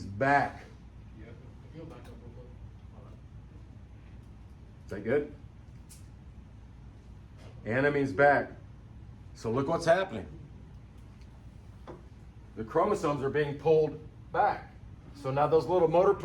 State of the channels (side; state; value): both; identical; correlation 1.00